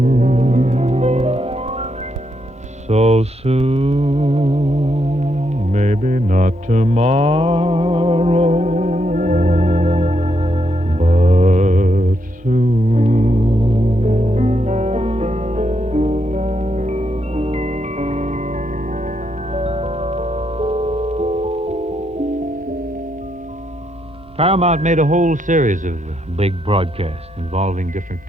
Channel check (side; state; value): both; normal; correlation 0.79